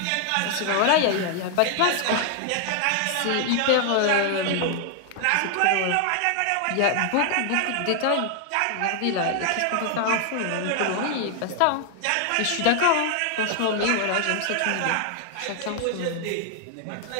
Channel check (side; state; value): both; different; correlation 0.00